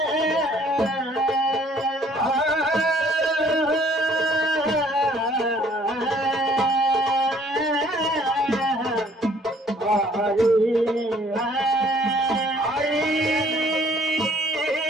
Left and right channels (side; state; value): both; normal; correlation 0.59